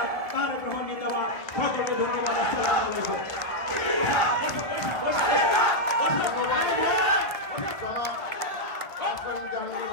তারেক রহমান জিন্দাবাদ। সকলকে ধন্যবাদ। আসসালামু আলাইকুম।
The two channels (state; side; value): late; right; 1.4 ms